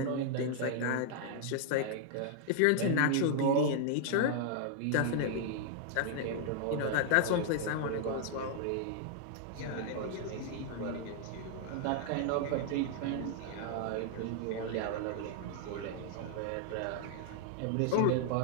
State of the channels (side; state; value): both; different; correlation 0.00